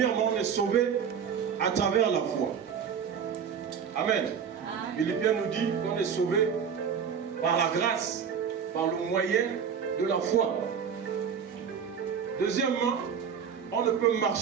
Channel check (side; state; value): left; quieter; 7.2 dB